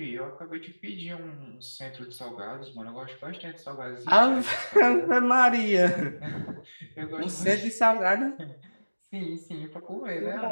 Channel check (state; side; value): inverted; both; correlation -1.00